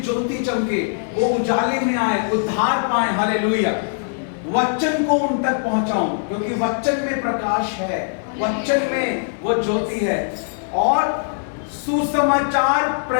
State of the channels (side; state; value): right; silent; digital silence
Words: ज्योति चमके, वो उजाले में आए, उद्धार पाए। हालेलुया। वचन को उन तक पहुंचाऊं, क्योंकि वचन में प्रकाश है, वचन में वो ज्योति है। और सुसमाचार